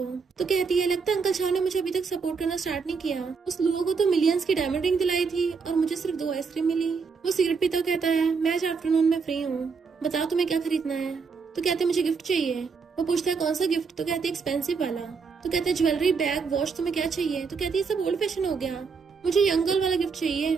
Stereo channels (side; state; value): left; quieter; 5.2 dB